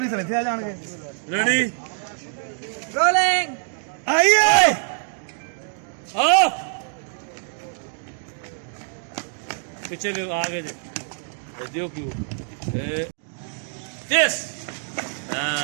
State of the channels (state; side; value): silent; left; 59 dB below the other